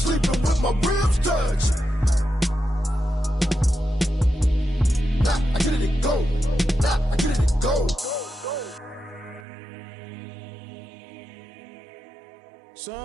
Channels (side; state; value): left; drops out; at 9.5 s